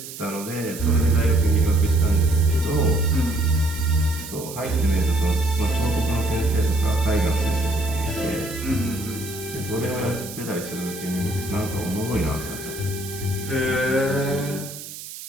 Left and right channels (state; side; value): noise; right; hiss, 12 dB below the sound